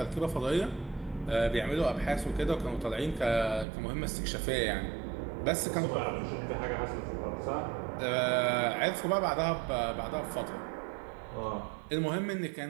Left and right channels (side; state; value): left; drops out; at 3.7 s